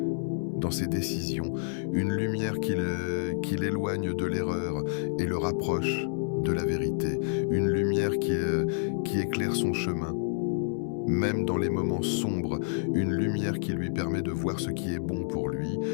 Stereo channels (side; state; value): right; silent; 58 dB below the other